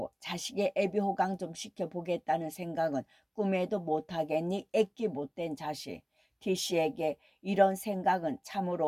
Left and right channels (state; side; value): identical; both; correlation 1.00